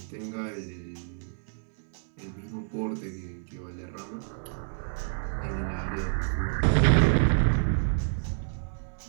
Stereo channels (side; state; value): left; silent; digital silence